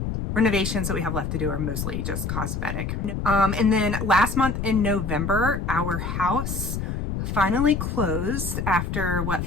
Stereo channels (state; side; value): noise; left; rumble, 3 dB below the sound